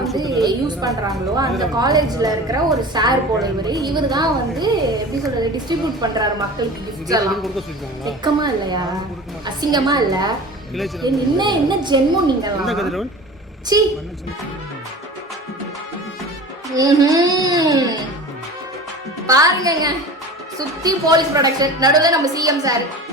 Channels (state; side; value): normal; both; correlation 0.36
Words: யூஸ் பண்றாங்களோ அந்த காலேஜ்ல இருக்கிற ஒரு சார் போல இவர் தான் வந்து எப்படி சொல்றது டிஸ்ட்ரிபியூட் பண்றாரு மக்களுக்கு கிஃப்ட்ஸ் எல்லாம். வெக்கமா இல்லையா? அசிங்கமா இல்ல? என்ன ஜென்மம் நீங்க? சீ பாருங்க சுத்தி போலீஸ் ப்ரொடக்ஷன் நடுவில் நம்ம சிஎம் சார்.